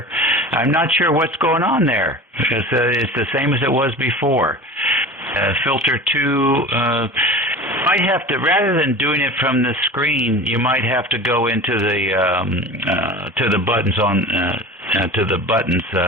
what's going on there. It's the same as it was before. Filter 2, might have to, rather than doing it from the screen, you might have to go into the to the buttons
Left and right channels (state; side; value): normal; both; correlation 0.35